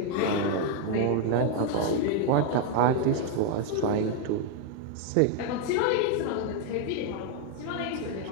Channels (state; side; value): different; both; correlation 0.00